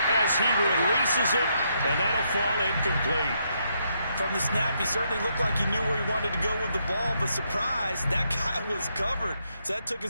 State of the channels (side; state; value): both; inverted; correlation -0.77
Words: as he releases it, and that'll fall incomplete. From the snap, he certainly looked like he knew where he wanted to go with the ball, but surprise, that guy was covered. So that took